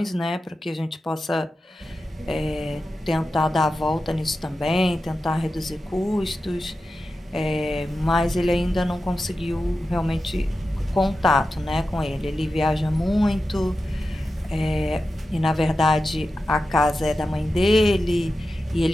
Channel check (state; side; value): normal; both; correlation 0.92